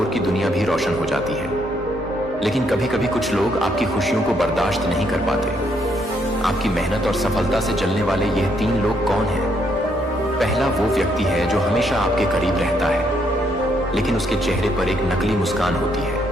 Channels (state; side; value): normal; both; correlation 0.73